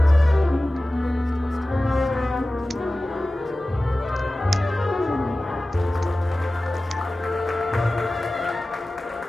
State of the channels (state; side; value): normal; both; correlation 0.96